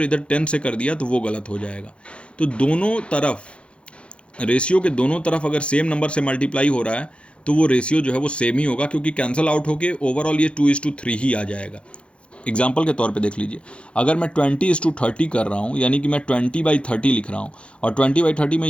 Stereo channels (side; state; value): right; late; 0.059 ms